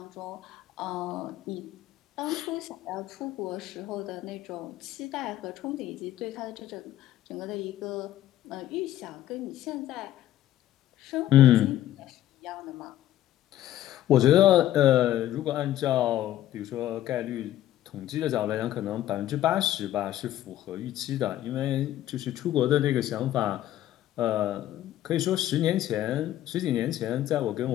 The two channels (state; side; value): quieter; right; 13.2 dB